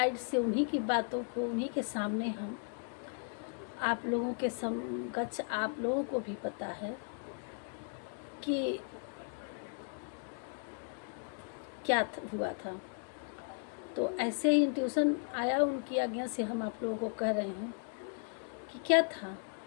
से, उन्हीं की बातों को, उन्हीं के सामने हम आप लोगों के समकक्ष आप लोगों को भी पता है कि क्या हुआ था। तो ऐसे ही इंट्यूशन आया उनकी आज्ञा से, हम आप लोगों को कह रहे हैं कि क्या था,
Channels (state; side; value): silent; right; 54 dB below the other